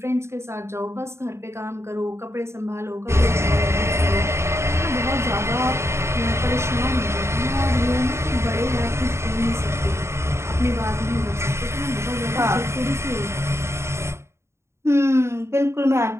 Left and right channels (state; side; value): late; left; 0.13 ms